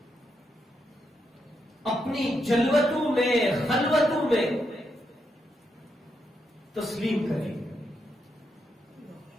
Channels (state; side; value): normal; both; correlation 0.82